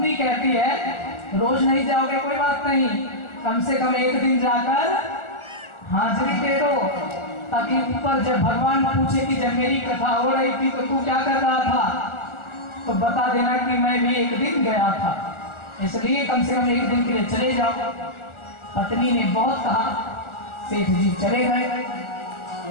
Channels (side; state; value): right; late; 1.4 ms